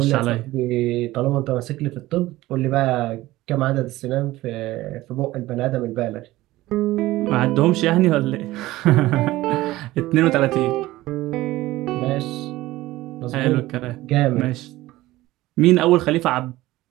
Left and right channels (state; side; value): quieter; left; 17.4 dB